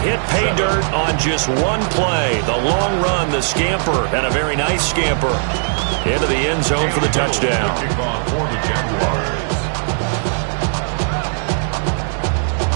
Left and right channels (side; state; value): left; silent; digital silence